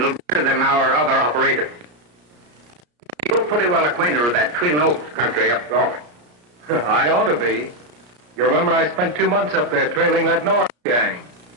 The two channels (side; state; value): left; late; 34 ms